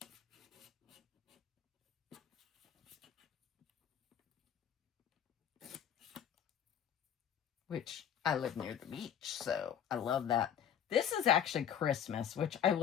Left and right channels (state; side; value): quieter; right; 9.2 dB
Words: Which I live near the beach, so I love that. This is actually Christmas, which I